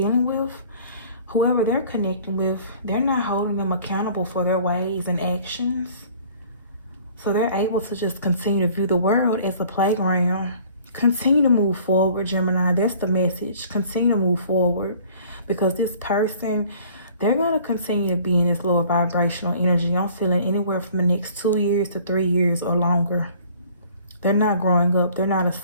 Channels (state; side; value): inverted; both; correlation -0.52